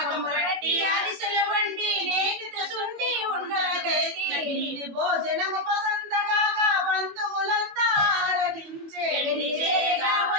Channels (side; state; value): left; late; 21 ms